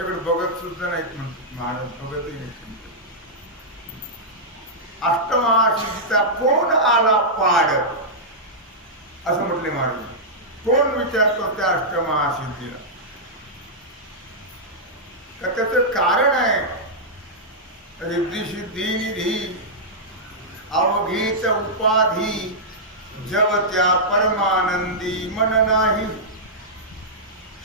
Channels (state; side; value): normal; both; correlation -0.10